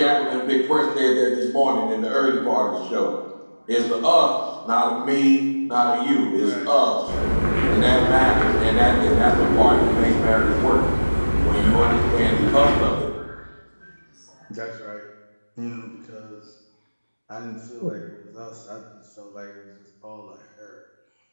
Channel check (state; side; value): inverted; both; correlation -1.00